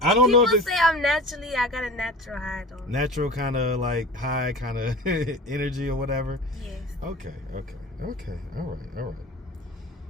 I don't know if it's... People say I got a natural high, though. Natural kind of, like, high kind of energy or whatever? Yes. Okay. All right.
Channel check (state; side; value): normal; both; correlation 0.36